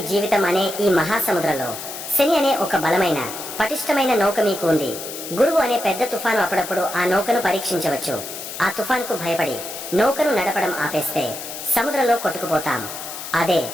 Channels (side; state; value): left; noise; hiss, 9 dB below the sound